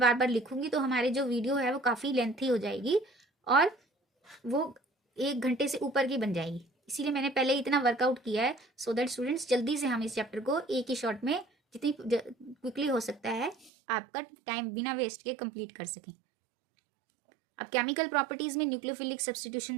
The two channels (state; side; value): drops out; left; at 13.7 s